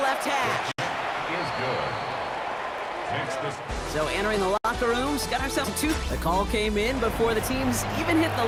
hash. Is good. So entering the locker rooms, got ourselves a 2. The call came in before the teams even hit the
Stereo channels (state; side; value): identical; both; correlation 1.00